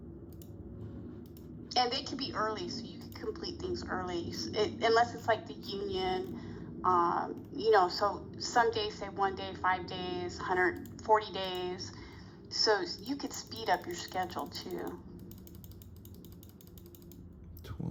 and they could be early, so you can complete things early, unless it's like the union, so some days say 1 day, 5 days, 140 days. So you could speed up your schedule too.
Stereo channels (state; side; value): identical; both; correlation 1.00